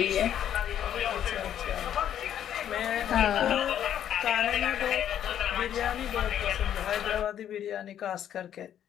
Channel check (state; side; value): quieter; right; 10.2 dB